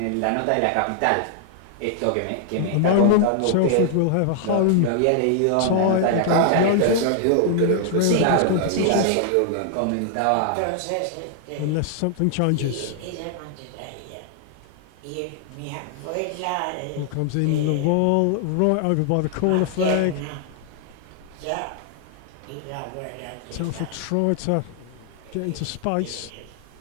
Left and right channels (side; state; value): both; different; correlation 0.00